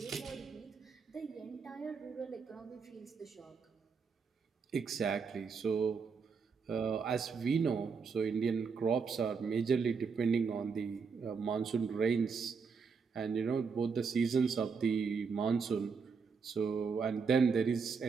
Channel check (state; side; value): quieter; left; 5.5 dB